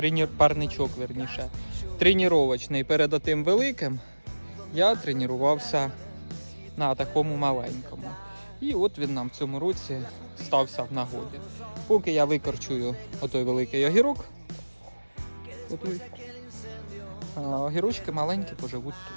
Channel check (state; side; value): inverted; both; correlation -1.00